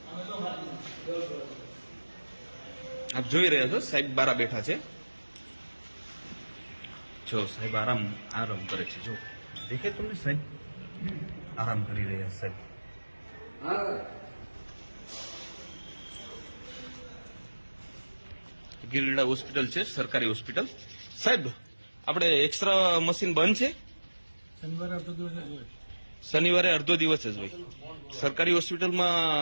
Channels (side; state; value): both; inverted; correlation -1.00